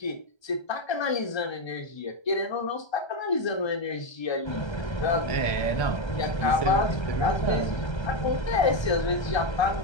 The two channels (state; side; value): late; right; 1.3 ms